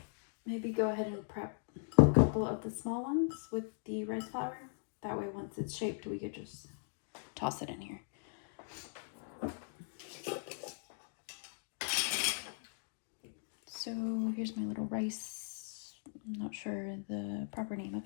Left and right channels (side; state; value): right; silent; digital silence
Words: Maybe go ahead and prep a couple of the small ones with the rice flour. That way once it's shaped, we could just toss it in here. So here's my little rice. I'm not sure the proper name of